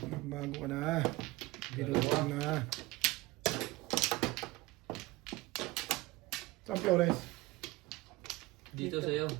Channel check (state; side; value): quieter; left; 20.9 dB